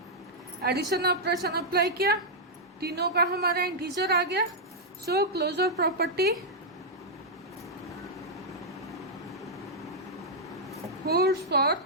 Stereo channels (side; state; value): both; normal; correlation -0.06